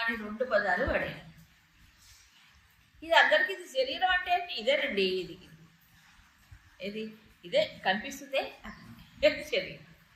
2 పదాలు వాడాడు. ఇది అందరికీ ఇది శరీరం అంటే ఇదేనండి, ఇదే కనిపిస్తుందే శరీరం.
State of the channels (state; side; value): identical; both; correlation 1.00